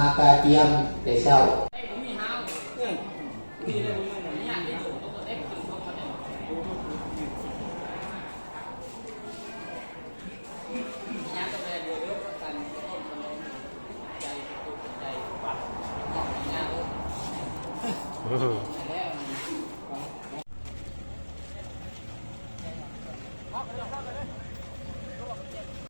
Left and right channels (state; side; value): inverted; both; correlation -1.00